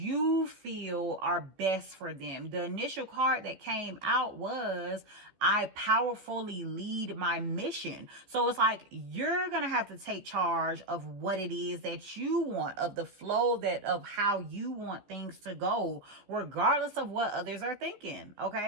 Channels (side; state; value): left; late; 14 ms